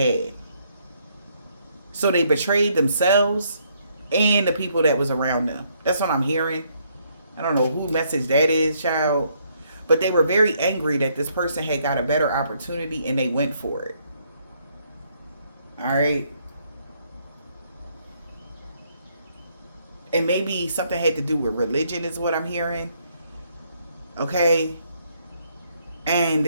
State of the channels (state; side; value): inverted; both; correlation -0.71